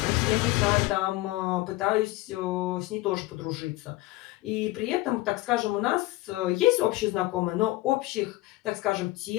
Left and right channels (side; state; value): right; quieter; 19.0 dB